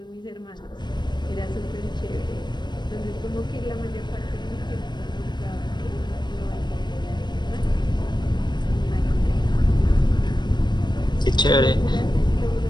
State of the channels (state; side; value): late; right; 0.21 ms